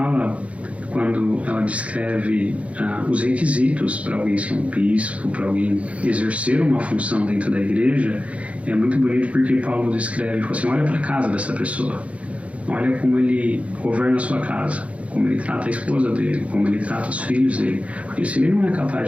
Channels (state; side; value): late; left; 0.064 ms